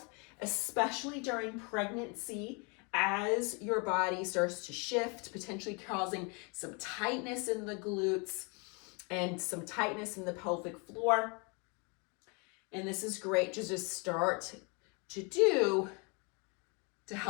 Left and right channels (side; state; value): right; quieter; 32.7 dB